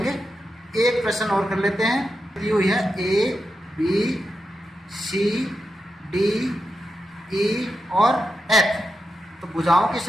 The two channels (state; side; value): normal; both; correlation 0.88